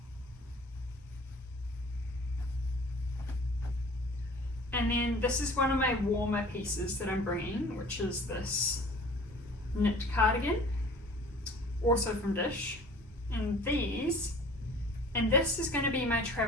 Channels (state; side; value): normal; both; correlation 0.47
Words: And then this is one of my warmer pieces that I'm bringing, which is this knit cardigan, also from Dish. And this is going to be my